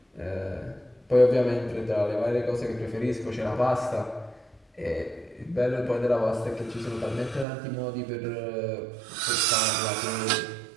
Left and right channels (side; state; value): left; drops out; at 7.5 s